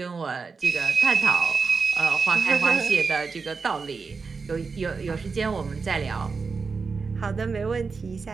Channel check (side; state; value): left; quieter; 4.8 dB